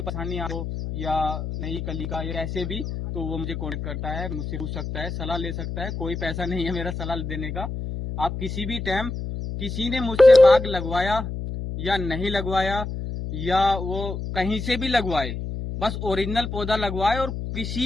परेशानी आ हो या नई कली का या ऐसे भी, तो वो मुझे कॉन्टेक्ट करता है, मुझसे पूछ सकता है, सलाह ले सकता है। कोई पैसा नहीं है मेरा सलाह देने का। आप किसी भी टाइम, किसी ने मुझसे बाग लगवाया या नहीं लगवाया या वो कहीं से भी लगवाए, बस ओरिजिनल पौधा लगवाए और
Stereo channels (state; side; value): noise; left; hum, 5 dB below the sound